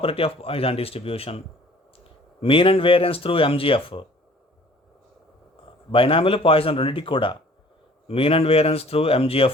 of Poisson distribution, mean and variance through MGF. Binomial Poisson రెండింటికి కూడా mean and variance through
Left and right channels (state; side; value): normal; both; correlation 0.52